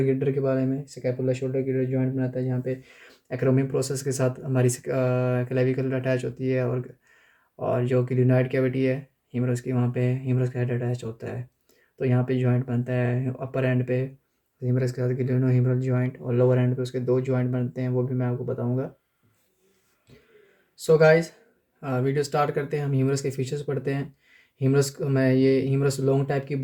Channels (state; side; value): identical; both; correlation 1.00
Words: गिल्डर के बारे में। स्कैपुला शोल्डर गिल्डर जॉइंट बनाता है जहाँ पे एक्रोमिक प्रोसेस के साथ हमारी क्लेविकल अटैच होती है, और जो क्लिनॉइड कैविटी है ह्यूमरस की, वहाँ पे ह्यूमरस का हेड अटैच होता है। तो यहाँ पे जॉइंट बनता है अपर एंड पे ह्यूमरस के साथ गिलियनो ह्यूमरल जॉइंट, और लोअर एंड पे उसके दो जॉइंट बनते हैं, वो भी मैं आपको बताऊंगा। सो गाइस, वीडियो स्टार्ट करते हैं। हम ह्यूमरस के फीचर्स पढ़ते हैं। ये ह्यूमरस लॉन्ग टाइप की